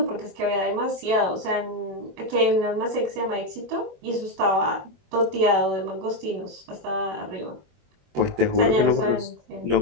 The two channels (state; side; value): late; left; 21 ms